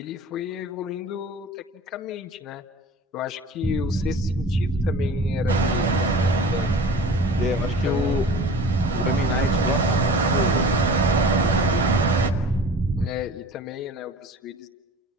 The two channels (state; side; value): normal; both; correlation 0.40